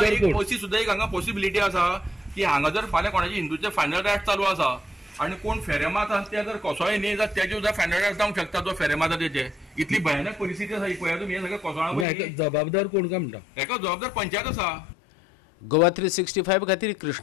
सुद्दां एक हांगा पॉसिबिलिटी आसा की हांगा जर फाल्यां कोणाचे हिंदूचे फायनल रायट चालू आसा आणि कोण फेरे मारतात ते जर कोसळे न्ही जाल्यार तेजे सुद्दां फायनल रायट जावंक शकता जो फेरे मारता तेजे. इतली भयानक परिस्थिती आसा ही पळया तुमी. हे सगळे कोसळा जबाबदार कोण काय म्हणटा? हेका जबाबदार पंचायत आसा. गोवा 365 खातीर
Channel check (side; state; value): right; drops out; at 12.1 s